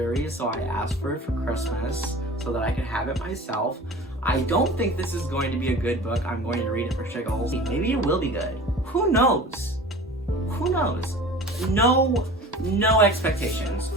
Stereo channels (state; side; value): normal; both; correlation 0.40